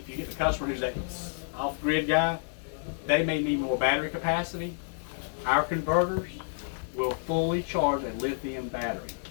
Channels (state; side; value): silent; right; digital silence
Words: you get the customer who's that off-grid guy, they may need more battery capacity. Our converters will fully charge a lithium battery.